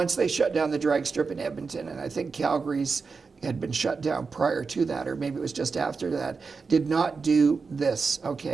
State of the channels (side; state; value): left; quieter; 4.8 dB